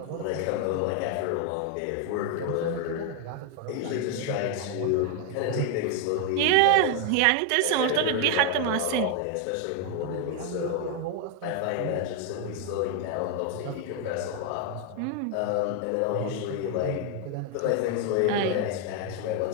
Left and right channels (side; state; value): both; different; correlation 0.01